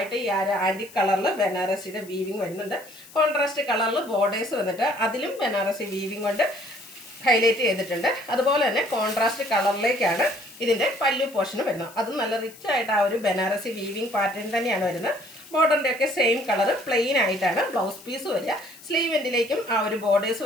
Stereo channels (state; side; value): noise; left; hiss, 21 dB below the sound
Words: ഈ ആൻറ്റിക് കളറിൽ ബനാറസിയുടെ വീവിങ് വരുന്നുണ്ട്. കോൺട്രാസ്റ്റ് കളറിൽ ബോർഡേഴ്സ് വന്നിട്ട് അതിലും ബനാറസി വീവിങ് കൊണ്ട് ഹൈലൈറ്റ് ചെയ്തിട്ടുണ്ട്. അതുപോലെ തന്നെ കോൺട്രാസ്റ്റ് കളറിലേക്കാണ് ഇതിൻ്റെ പല്ലു പോർഷൻ വരുന്നത്. അതും നല്ല റിച്ച് ആയിട്ട് ആ ഒരു ബനാറസി വീവിങ് പാറ്റേൺ തന്നെയാണ് വരുന്നത്. ബോർഡറിൻ്റെ ഒക്കെ സെയിം കളർ പ്ലെയിൻ ആയിട്ടാണ് ബ്ലൗസ് പീസ് വരിക. സ്ലീവ് എൻഡിലേക്കും ആ ഒരു ബോർഡേഴ്സ്